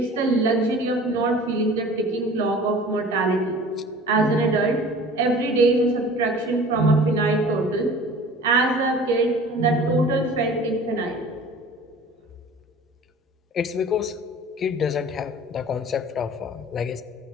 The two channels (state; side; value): normal; both; correlation 0.44